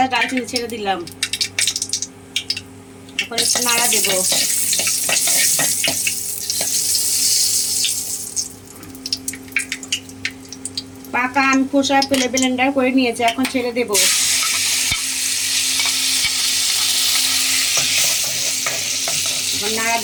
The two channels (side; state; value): both; identical; correlation 1.00